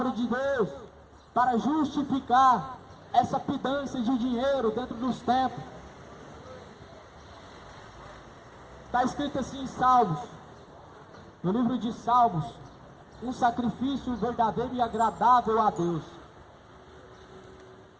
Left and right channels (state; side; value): identical; both; correlation 1.00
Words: de Deus para justificar essa pedância de dinheiro dentro dos templos. Está escrito assim em Salmos, no livro de Salmos: um sacrifício verdadeiro e agradável a Deus.